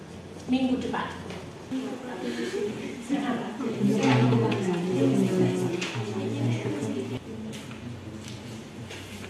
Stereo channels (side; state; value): both; identical; correlation 1.00